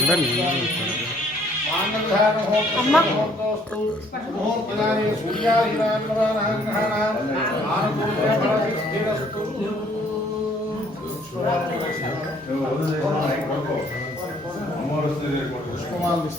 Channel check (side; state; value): both; normal; correlation 0.62